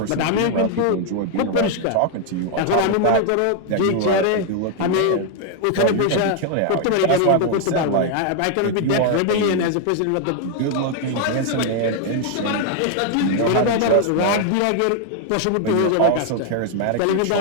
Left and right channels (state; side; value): different; both; correlation 0.00